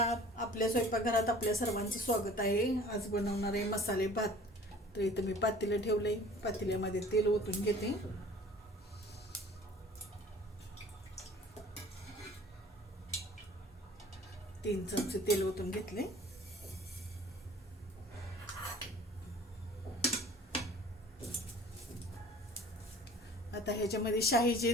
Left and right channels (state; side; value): normal; both; correlation 0.48